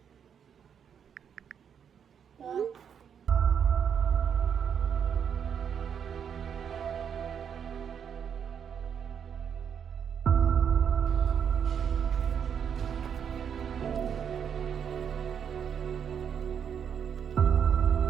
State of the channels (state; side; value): quieter; left; 7.8 dB